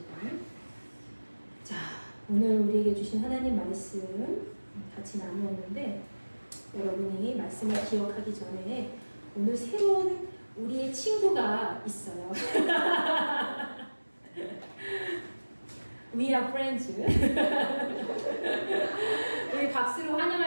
자, 오늘 우리에게 주신 하나님 말씀 같이 나누었는데 여러분이 말씀을 기억하기 전에 오늘 새로운 우리의 친구가 있어요. We are friends. 우리 박수로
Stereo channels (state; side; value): inverted; both; correlation -1.00